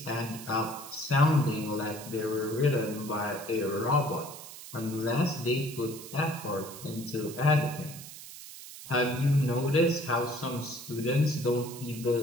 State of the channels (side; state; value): right; noise; hiss, 14 dB below the sound